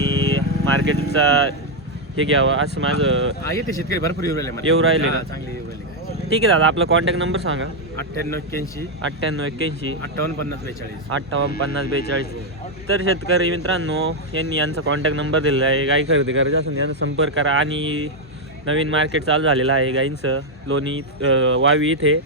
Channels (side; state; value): both; normal; correlation 0.01